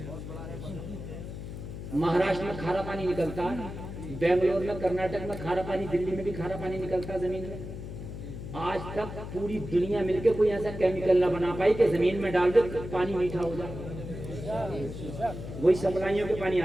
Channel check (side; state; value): left; noise; hum, 9 dB below the sound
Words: مہاراشٹر میں کھارا پانی نکلتا ہے، بنگلور میں، کرناٹک میں کھارا پانی، دلی میں بھی کھارا پانی نکلتا ہے زمین میں. آج تک پوری دنیا مل کے کوئی ایسا کیمیکل نہ بنا پائی کہ زمین میں ڈال دے پانی میٹھا ہو جائے. وہی سپلائیوں کے پانی